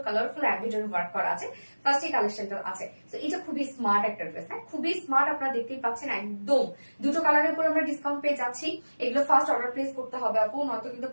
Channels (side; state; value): both; inverted; correlation -1.00